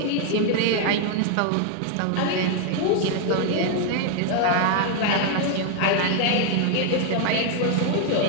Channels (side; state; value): both; different; correlation 0.00